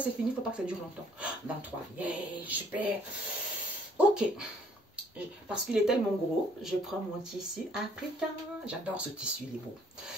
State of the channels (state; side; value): normal; both; correlation 0.61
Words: fini, il ne faut pas que ça dure longtemps. 23, yeah, super. Ok. Parce qu'il est tellement gros, je prends mon tissu africain. J'adore ce tissu, il est beau.